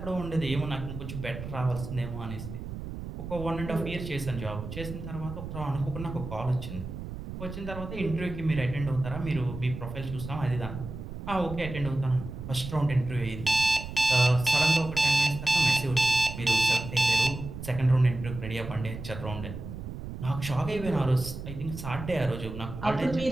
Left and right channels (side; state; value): right; noise; rumble, 9 dB below the sound